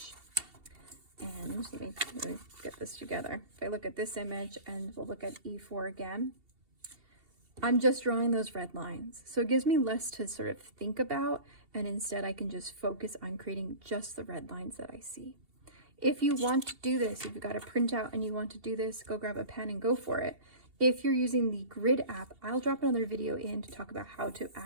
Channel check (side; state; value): left; late; 2.7 ms